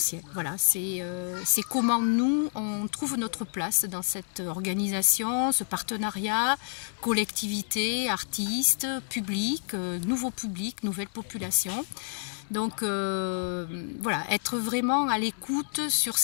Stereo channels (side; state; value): right; silent; digital silence